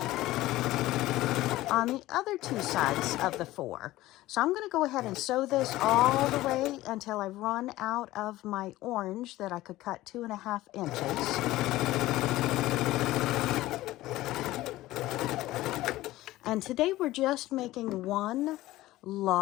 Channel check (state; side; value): quieter; right; 16.7 dB